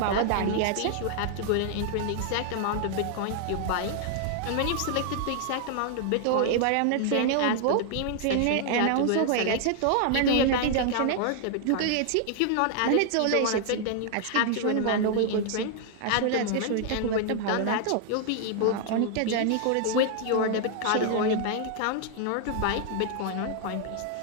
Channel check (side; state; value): both; different; correlation 0.00